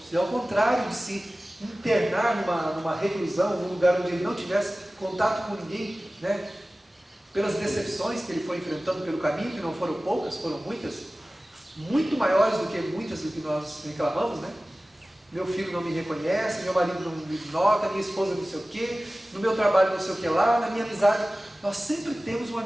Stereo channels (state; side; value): normal; both; correlation 0.97